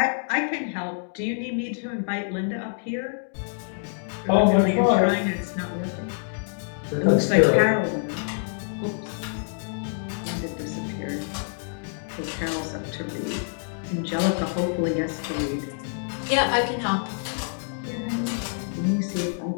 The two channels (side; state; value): right; silent; 61 dB below the other